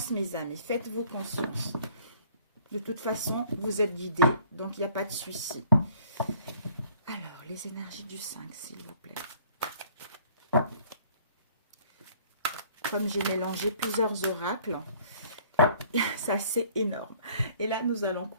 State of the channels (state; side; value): inverted; both; correlation -0.56